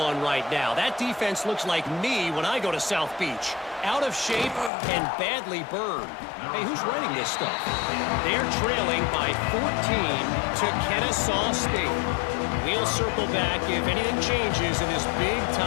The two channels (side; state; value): right; drops out; at 4.7 s